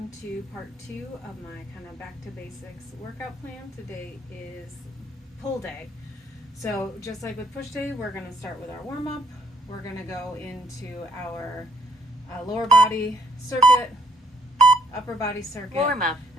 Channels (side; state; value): both; normal; correlation 0.68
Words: to part 2 of my kind of back to basics workout plan. Today is pull day. So just like with push day, we're going to start with our warm-up. We're going to go into our lower body circuit, upper body circuit, warm-up,